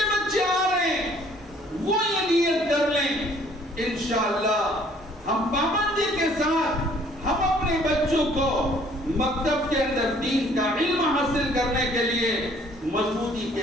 بچے آ رہے ہیں وہ یہ نیت کر لیں انشاءاللہ ہم پابندی کے ساتھ ہم اپنے بچوں کو مکتب کے اندر دین کا علم حاصل کرنے کے لیے مضبوطی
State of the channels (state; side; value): normal; both; correlation 0.59